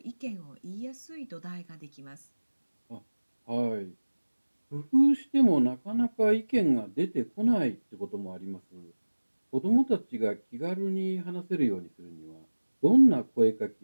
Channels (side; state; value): both; inverted; correlation -1.00